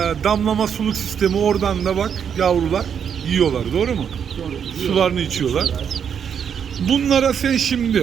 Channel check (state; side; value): quieter; left; 7.7 dB